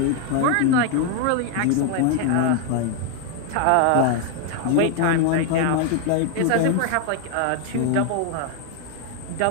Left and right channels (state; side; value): different; both; correlation 0.00